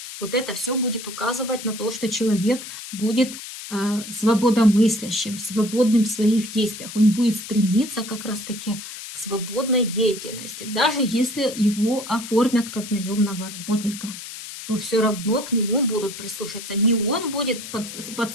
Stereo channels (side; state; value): left; noise; hiss, 11 dB below the sound